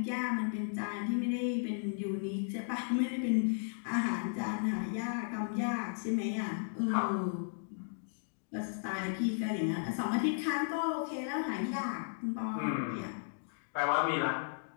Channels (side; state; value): right; silent; digital silence